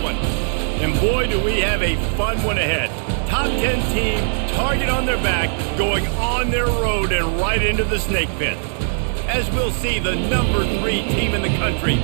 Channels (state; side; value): silent; left; 60 dB below the other